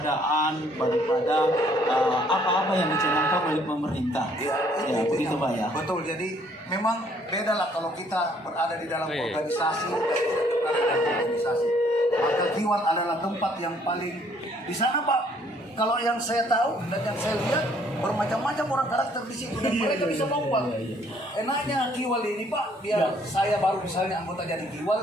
daripada apa-apa yang dicanangkan oleh pemerintah. Ya, begitu Pak ya. Betul. Jadi memang beda lah kalau kita berada di dalam organisasi dan tidak berada di dalam organisasi. Maka Kiwal adalah tempat yang paling di sana Pak. Kalau yang saya tahu dan yang saya lihat bermacam-macam orang karakter di situ dan mereka bisa bawa. Enaknya Kiwal ini Pak, saya baru misalnya anggota jadi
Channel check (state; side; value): normal; both; correlation 0.63